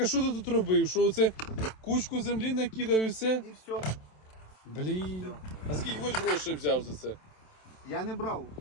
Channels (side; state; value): right; late; 27 ms